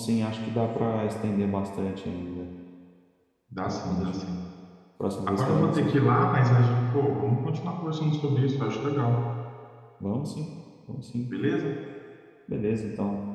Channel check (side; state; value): both; identical; correlation 1.00